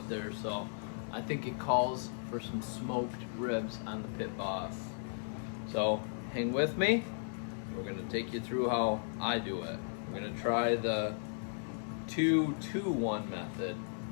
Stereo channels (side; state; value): right; silent; digital silence